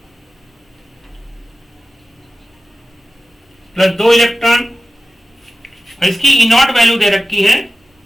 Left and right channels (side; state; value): both; normal; correlation 0.95